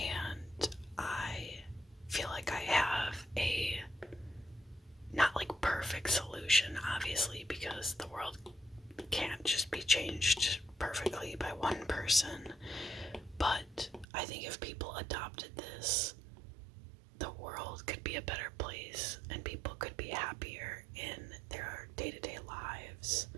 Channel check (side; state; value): left; drops out; at 14.1 s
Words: I feel like I have a not like perfect solution, obviously, because the world can't just be changed perfectly by one person. But I think if people adopted this, the world could be a better place and people could be happier in their day-to-day lives.